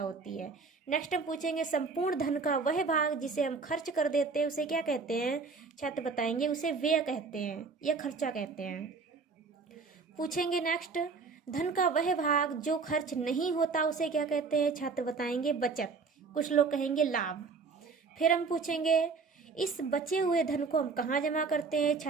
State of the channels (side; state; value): left; quieter; 4.7 dB